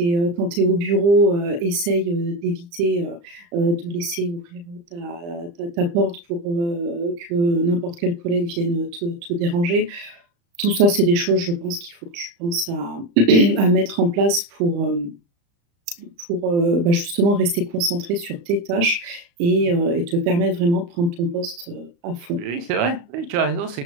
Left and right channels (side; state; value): left; late; 35 ms